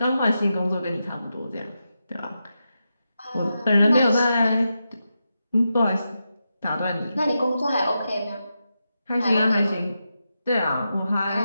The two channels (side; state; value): both; inverted; correlation -0.88